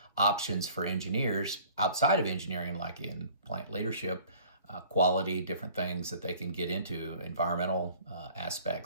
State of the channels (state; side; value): inverted; both; correlation -0.51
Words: options for engineers outside of engineering, like in plant leadership, quality, different things that they can get into, environmental